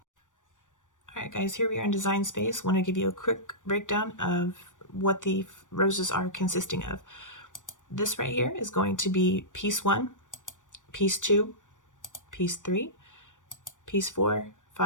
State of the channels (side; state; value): right; late; 0.87 ms